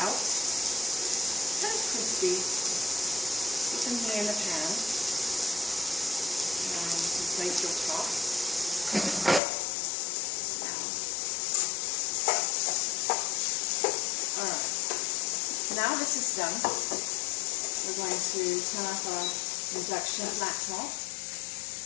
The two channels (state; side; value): drops out; right; at 9.4 s